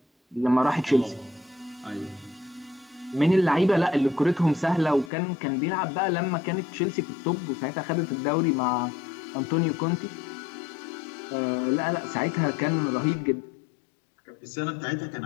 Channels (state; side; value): drops out; right; at 5.1 s